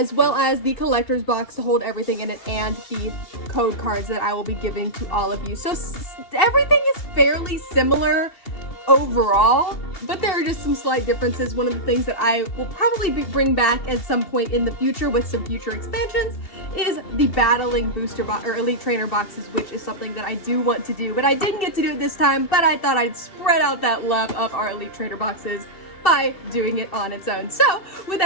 well as the collector's box to hold everything in it, and the code cards that I will be giving to all of you. So everything is fairly similar overall, but there are just some slight differences. One of the things that I will probably bring back at some point in the future with some future expansions is the battling booster box or Elite Trainer boxes, which is something that I do want to do, but I didn't get to do it this time, but I thought I'd spread out that love of our Elite Trainer boxes by doing it on its own. So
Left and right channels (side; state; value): right; late; 2.6 ms